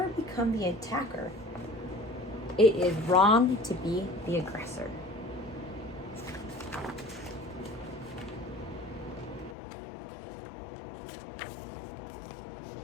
become the attacker. It is wrong to be the aggressor.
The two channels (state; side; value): drops out; right; at 9.6 s